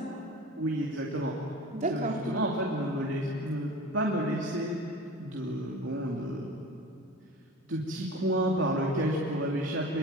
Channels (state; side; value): normal; both; correlation 0.37